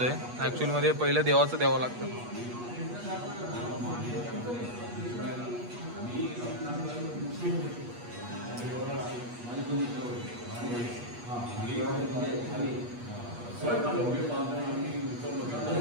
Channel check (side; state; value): left; late; 8.3 ms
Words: ॲक्च्युअल मध्ये पहिलं देवाचं द्यावं लागतं.